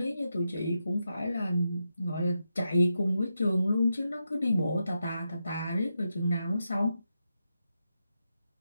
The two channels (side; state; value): both; inverted; correlation -0.86